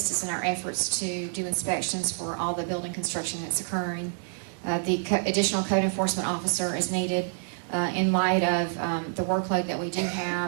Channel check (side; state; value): left; silent; digital silence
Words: us in our efforts to do inspections for all the building construction that's occurring. The additional code enforcement officer is needed in light of the workload that we do